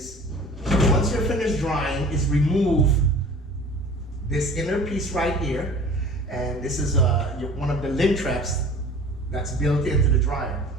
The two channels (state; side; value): normal; both; correlation 0.44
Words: once you're finished drying, is remove this inner piece right here. And this is one of the lint traps that's built into the dryer.